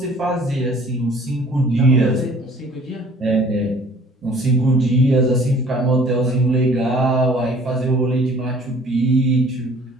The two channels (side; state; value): both; normal; correlation 0.53